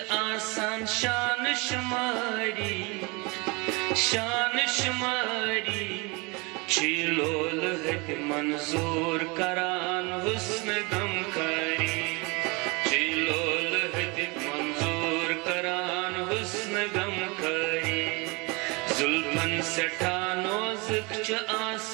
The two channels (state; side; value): quieter; left; 27.9 dB